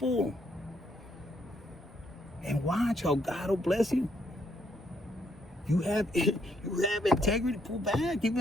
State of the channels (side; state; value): both; normal; correlation 0.73